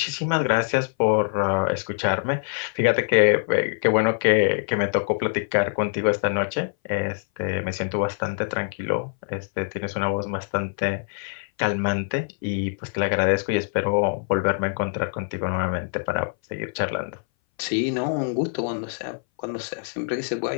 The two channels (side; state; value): right; silent; 60 dB below the other